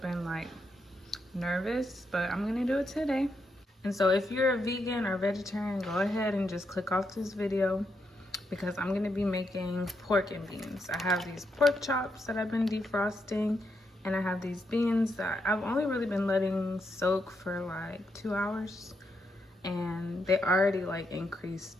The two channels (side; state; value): both; normal; correlation 0.81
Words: nervous, but I'm gonna do it today. And so if you're a vegan or vegetarian, go ahead and just click off this video because I'm gonna be making pork and beans. I have these pork chops that I've been defrosting, and I have these beans that I've only really been letting soak for 2 hours, and they already